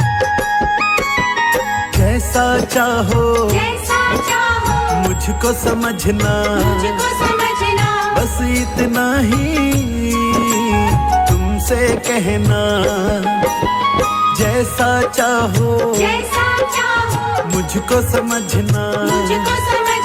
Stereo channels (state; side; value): identical; both; correlation 1.00